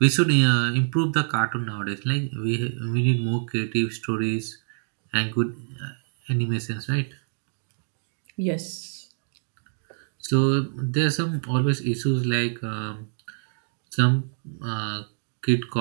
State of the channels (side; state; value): left; silent; digital silence